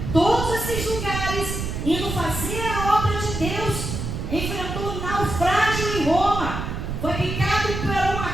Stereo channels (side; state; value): right; noise; rumble, 4 dB below the sound